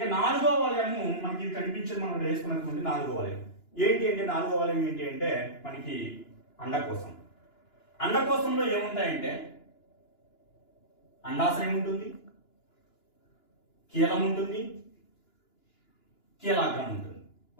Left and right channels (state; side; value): late; right; 2.9 ms